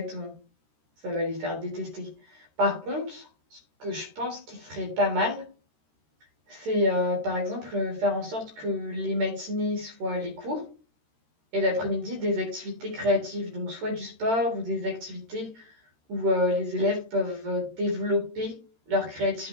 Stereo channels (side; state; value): left; late; 13 ms